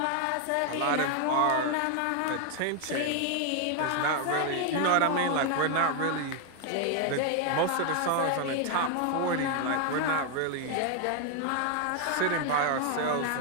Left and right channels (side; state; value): both; different; correlation 0.01